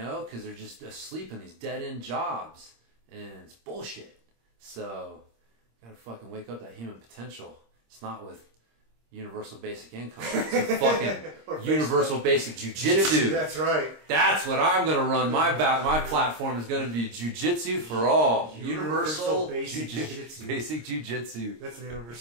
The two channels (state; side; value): late; left; 26 ms